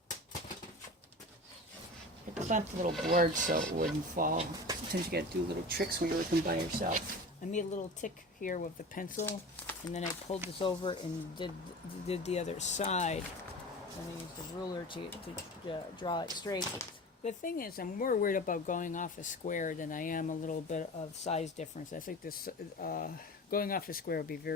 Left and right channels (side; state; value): both; normal; correlation 0.34